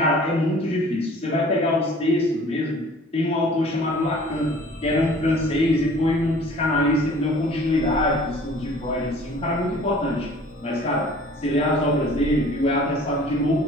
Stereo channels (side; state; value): both; normal; correlation 0.49